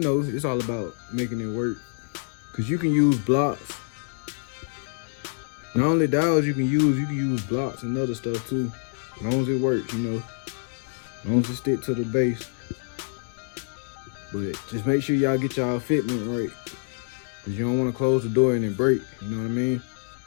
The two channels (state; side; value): silent; right; digital silence